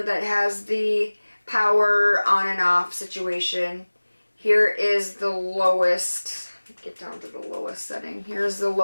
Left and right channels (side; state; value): both; inverted; correlation -1.00